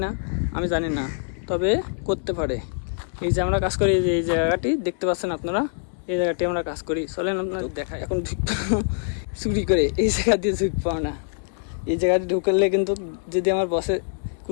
না আমি জানি না, তবে করতে পারে। এই যে আমরা কাজ করি, এই জায়গাটি দেখতে পাচ্ছেন আপনারা, এই জায়গাটি আমরা কাজ করি। চলেন আপনার দেখায়। এখন চুরি করে এই জায়গা দিয়ে ঝুঁক পাও না। এই জায়গাটি ঢুকলে কিন্তু যদি আমার বসে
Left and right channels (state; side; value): silent; right; digital silence